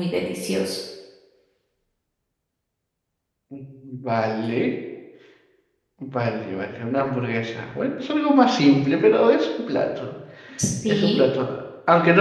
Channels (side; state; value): both; identical; correlation 1.00